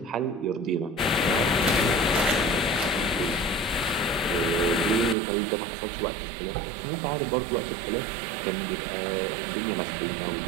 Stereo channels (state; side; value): drops out; left; at 5.2 s